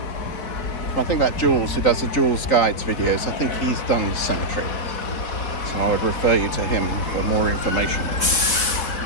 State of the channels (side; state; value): right; late; 3.9 ms